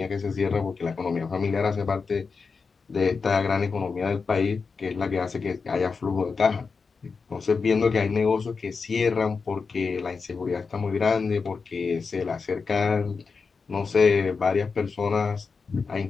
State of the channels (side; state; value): right; quieter; 4.9 dB